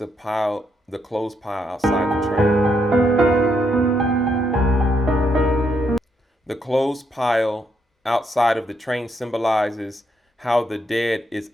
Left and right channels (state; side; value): normal; both; correlation 0.76